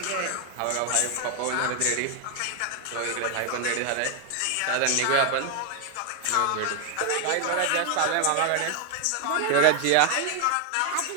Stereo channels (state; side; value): different; both; correlation 0.00